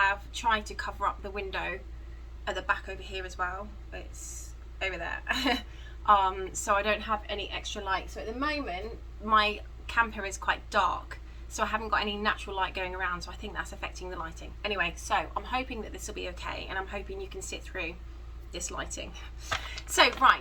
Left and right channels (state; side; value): identical; both; correlation 1.00